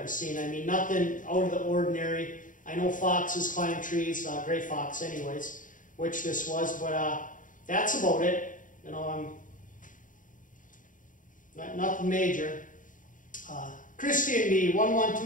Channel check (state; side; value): late; right; 0.38 ms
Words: seen. I mean, nothing out of the ordinary. I know foxes climb trees, gray fox anyways, which this was, but that's about it. You know, nothing major. Christy and me,